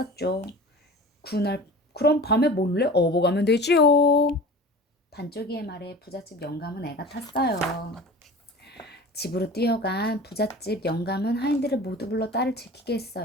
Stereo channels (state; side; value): normal; both; correlation 0.38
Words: 그럼 밤에 몰래 업어가면 되지요. 반쪽이의 말에 부잣집 영감은 애가 탔어요. 집으로 뛰어간 부잣집 영감은 하인들을 모두 불러 딸을 지키게